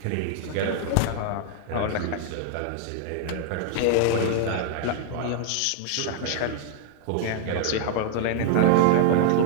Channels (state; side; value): different; both; correlation 0.00